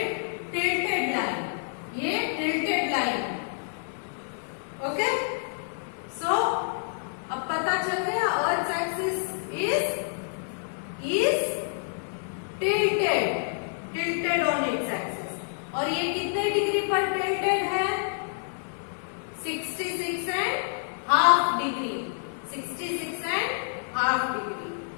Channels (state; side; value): silent; right; digital silence